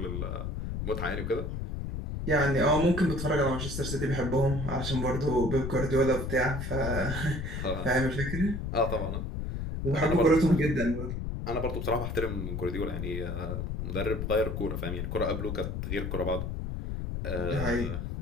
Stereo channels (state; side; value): noise; left; rumble, 4 dB below the sound